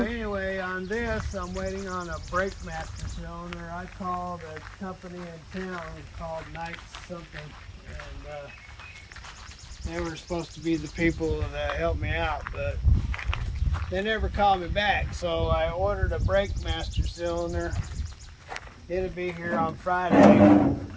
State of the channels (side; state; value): both; identical; correlation 1.00